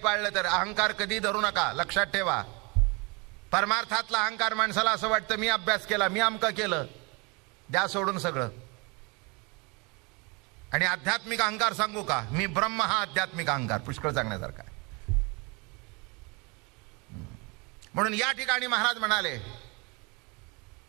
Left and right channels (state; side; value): quieter; left; 29.3 dB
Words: तर अहंकार कधी धरू नका. लक्षात ठेवा. परमार्थातला अहंकार माणसाला असं वाटतं मी अभ्यास केला, मी अमकं केलं, द्या सोडून सगळं. आणि आध्यात्मिक अहंकार सांगू का, मी ब्रह्म, हा आध्यात्मिक अहंकार पुष्कळ सांगण्यासारखा आहे. म्हणून या ठिकाणी महाराज म्हणाले,